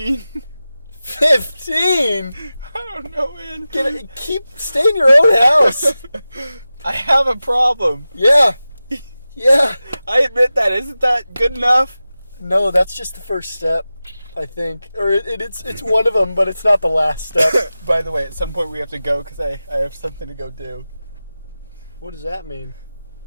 15?! I don't know, man. Stay in your own house! I have a problem. Yeah. Yeah. I admit that. Isn't that good enough? No, that's just the first step, I think. Or it's one of them, but it's not the last step. By the way, at some point we have to go because I have something to go do. What does that mean?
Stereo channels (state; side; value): inverted; both; correlation -0.95